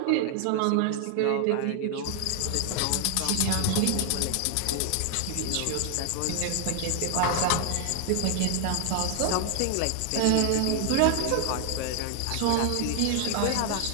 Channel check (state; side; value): different; both; correlation 0.00